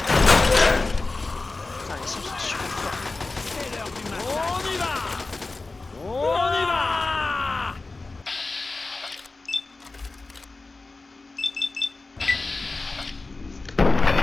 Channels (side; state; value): right; quieter; 3.5 dB